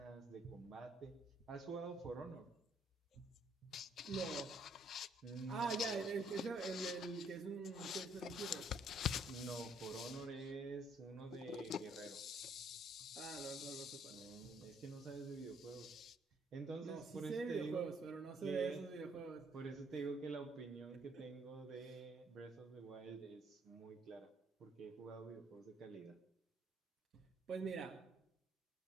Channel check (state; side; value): normal; both; correlation 0.66